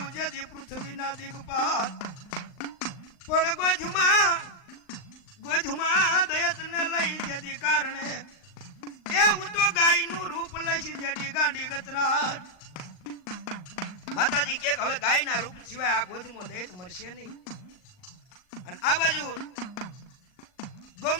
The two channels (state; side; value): late; right; 39 ms